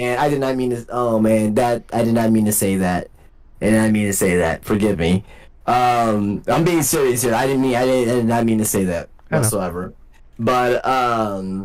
I did not mean to. Oh man, I did not mean to say that. I did not mean to say that. Forgive me. I'm being serious here. I did not mean to say that whatsoever. But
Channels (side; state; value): both; identical; correlation 1.00